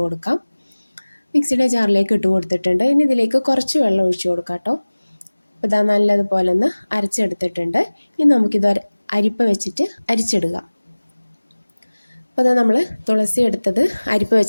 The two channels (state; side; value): inverted; both; correlation -1.00